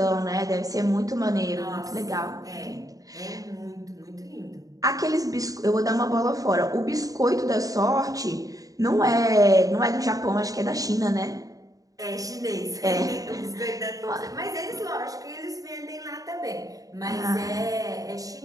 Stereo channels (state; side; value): late; left; 0.17 ms